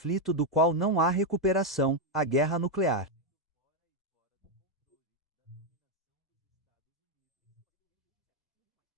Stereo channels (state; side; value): normal; both; correlation 0.02